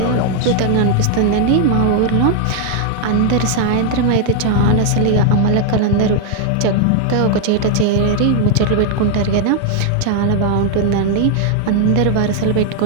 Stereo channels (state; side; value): different; both; correlation 0.00